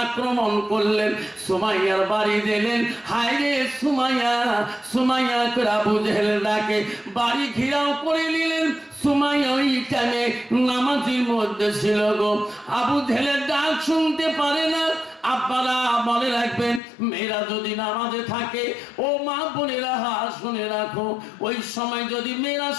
আক্রমণ করলেন, সুমাইয়ার বাড়ি দিলেন। হায় রে সুমাইয়া, সুমাইয়া করে আবু জেহেল ডাকে বাড়ি ঘিরাও করে নিলেন। সুমাইয়া ওই টাইমে নামাজের মধ্যে ছিল গো। আবু জেহেলের ডাক শুনতে পারে না। আপনারা মনে রাখবেন, মেয়েরা যদি নামাজে থাকে, ও মা বোনেরা শুনে রাখো, ওই সময় যদি মেয়েরা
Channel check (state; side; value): drops out; right; at 16.8 s